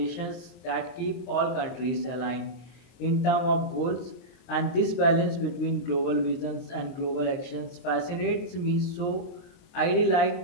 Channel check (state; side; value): late; right; 23 ms